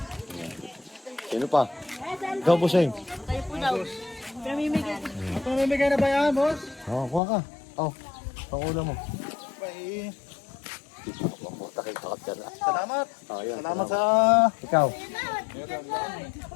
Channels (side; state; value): right; drops out; at 7.2 s